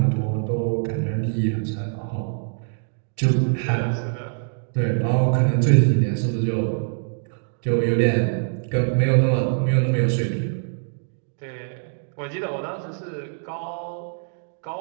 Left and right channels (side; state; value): left; silent; digital silence